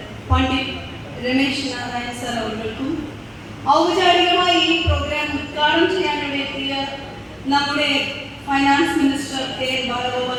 പണ്ഡിറ്റ് രമേശ് നാരായണ സർ അവർക്കും ഔപചാരികമായി ഈ പ്രോഗ്രാം ഉദ്ഘാടനം ചെയ്യാനുള്ള എത്തിയ നമ്മുടെ finance minister K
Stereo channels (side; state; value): both; identical; correlation 1.00